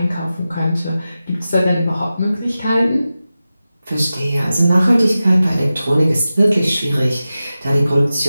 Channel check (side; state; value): both; inverted; correlation -0.94